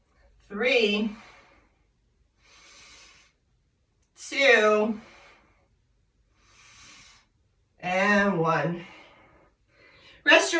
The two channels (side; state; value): both; identical; correlation 1.00